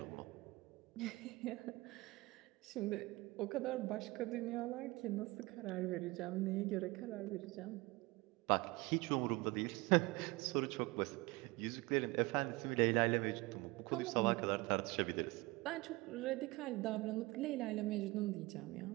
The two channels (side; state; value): left; quieter; 22.5 dB